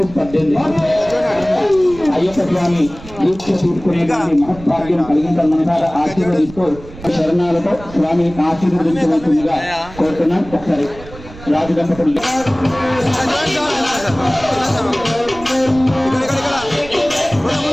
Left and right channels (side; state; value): right; noise; rumble, 17 dB below the sound